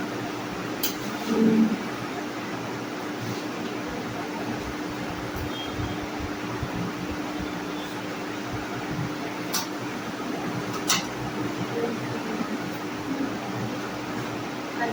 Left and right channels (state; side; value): identical; both; correlation 1.00